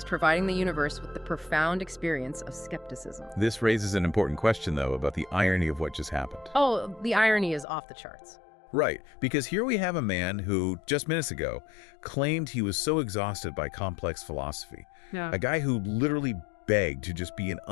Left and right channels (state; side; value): drops out; right; at 7.7 s